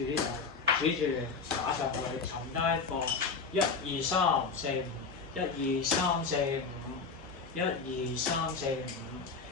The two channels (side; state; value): right; quieter; 4.8 dB